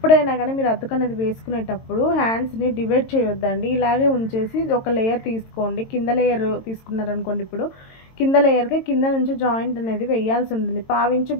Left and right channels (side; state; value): right; late; 22 ms